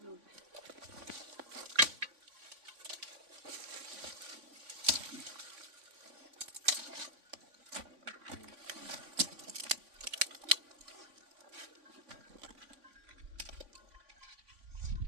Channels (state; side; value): late; left; 3.5 ms